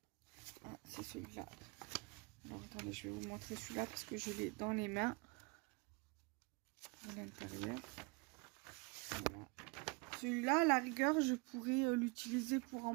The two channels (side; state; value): left; quieter; 29.0 dB